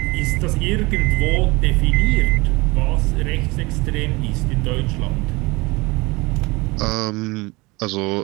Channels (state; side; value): quieter; left; 24.1 dB